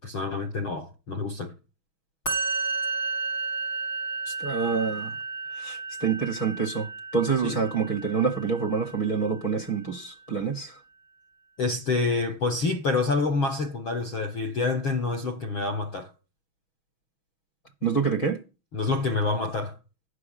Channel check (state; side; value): late; right; 6.2 ms